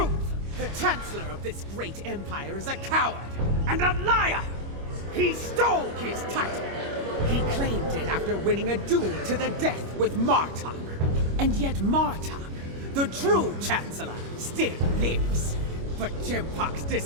The Chancellor of this great empire is a coward and a liar! He stole his title! He claimed it after winning a duel to the death with Martok. And yet Martok, the true Chancellor, still lives. But Jimpok's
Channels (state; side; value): late; left; 25 ms